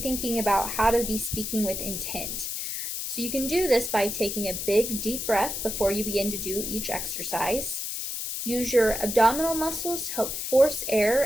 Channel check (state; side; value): noise; left; hiss, 4 dB below the sound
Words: thinking about how to be speaking with intent. So you can do this by taking a big, deep breath before you begin to do each exercise. Use your abdominal muscles to help force